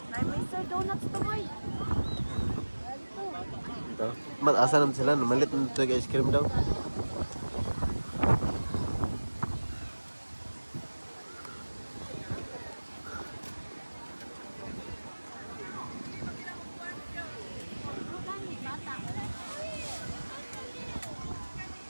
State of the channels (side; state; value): both; inverted; correlation -1.00